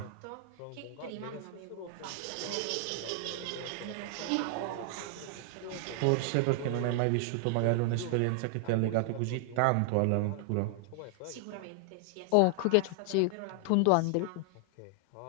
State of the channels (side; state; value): both; different; correlation 0.00